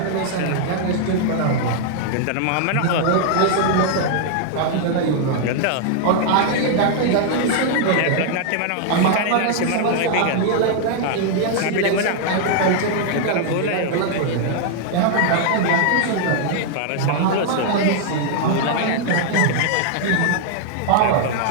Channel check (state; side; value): different; both; correlation 0.00